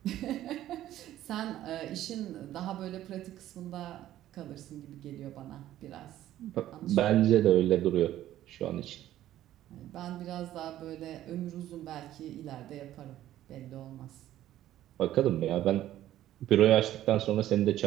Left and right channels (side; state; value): left; quieter; 13.2 dB